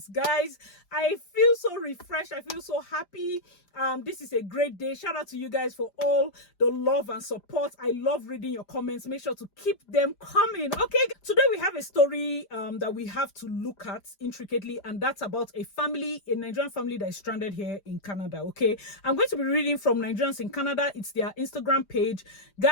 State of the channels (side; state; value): right; late; 5.0 ms